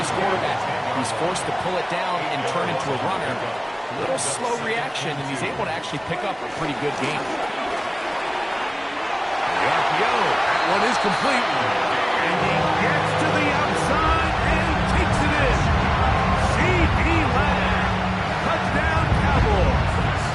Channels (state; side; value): identical; both; correlation 1.00